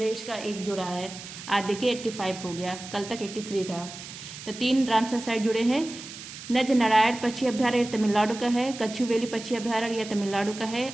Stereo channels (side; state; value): right; noise; hiss, 13 dB below the sound